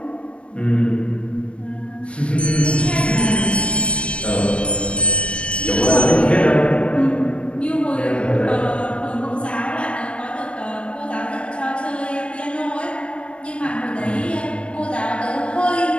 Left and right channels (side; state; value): right; late; 0.060 ms